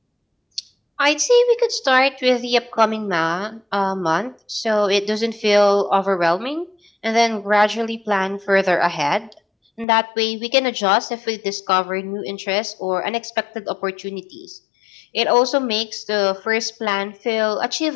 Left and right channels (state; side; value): drops out; right; at 9.9 s